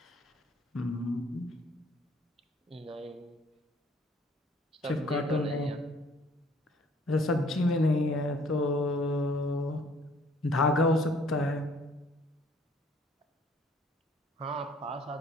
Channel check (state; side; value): normal; both; correlation 0.58